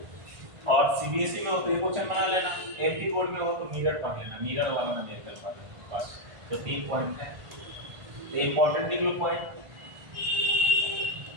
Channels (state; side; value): late; left; 1.5 ms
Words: और सीबीएसई में हो तो ये क्वेश्चन बना लेना, एमपी बोर्ड में हो तो मिरर पढ़ लेना, मिरर वाला ना देख कर पा लेना बस। तो 3 पॉइंट है, तो इंपॉर्टेंट लिख लो पॉइंट।